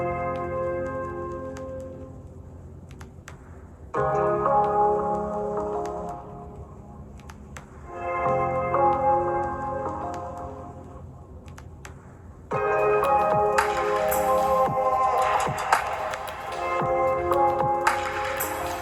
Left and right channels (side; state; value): both; identical; correlation 1.00